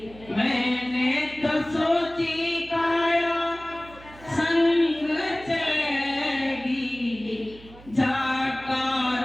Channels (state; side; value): noise; right; hum, 21 dB below the sound